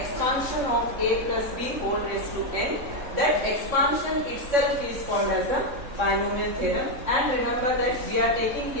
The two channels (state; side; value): late; left; 3.6 ms